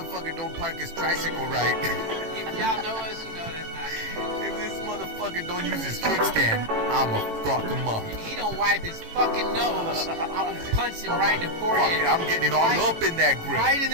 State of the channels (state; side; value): late; left; 18 ms